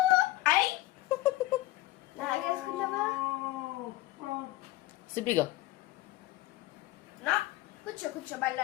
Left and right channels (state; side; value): quieter; right; 17.1 dB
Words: అయ్ నాగేసుకున్నావా? సిబిగా నా కూర్చో కూర్చో బల్ల